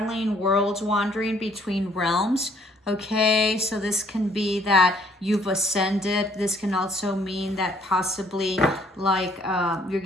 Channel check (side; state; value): both; normal; correlation 0.62